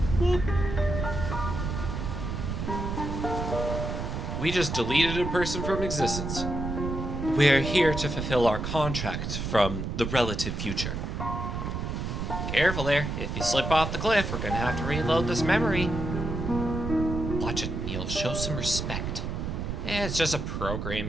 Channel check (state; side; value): noise; right; rumble, 4 dB below the sound